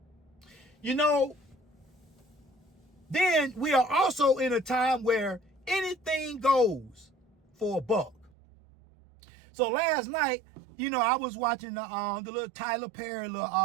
You know, then we are also in a time where anything goes for a buck. So last night, you know, I was watching the little Tyler Perry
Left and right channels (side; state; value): left; drops out; at 8.3 s